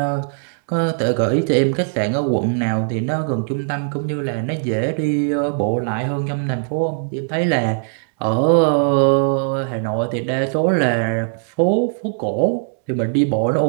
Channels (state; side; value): silent; left; 66 dB below the other